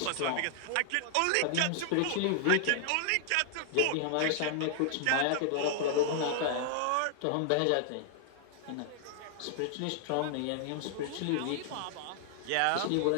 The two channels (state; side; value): different; both; correlation 0.00